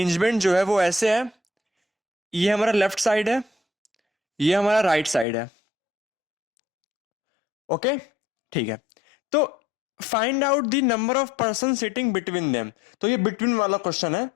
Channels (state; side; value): drops out; right; at 5.2 s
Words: जो है वो ऐसे है। ये हमारा लेफ्ट साइड है, ये हमारा राइट साइड है। ओके, ठीक है। तो find out the number of person sitting between them. तो ये बिटवीन वाला क्वेश्चन है,